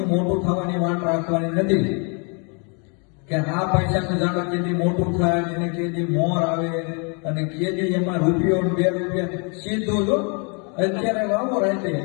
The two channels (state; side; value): quieter; right; 36.2 dB